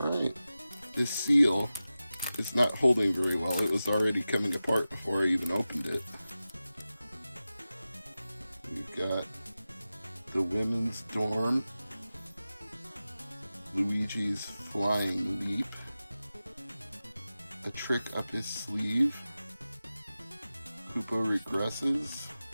this seal is not holding very well. It was already coming apart before I even opened it. We've got the women's dorm, Luigi's flying leap, a trick up his sleeve, Koopa regresses,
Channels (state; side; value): inverted; both; correlation -0.95